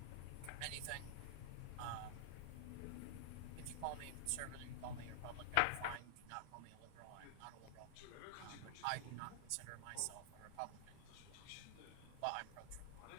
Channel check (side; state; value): both; different; correlation -0.01